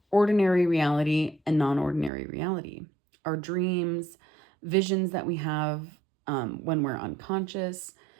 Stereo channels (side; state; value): left; drops out; at 2.1 s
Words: ordinary reality and non-ordinary reality. Our dreams, visions that we have when we're unconscious.